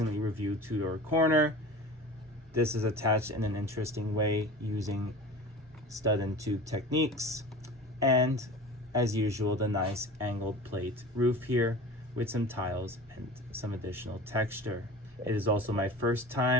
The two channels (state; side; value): normal; both; correlation 0.36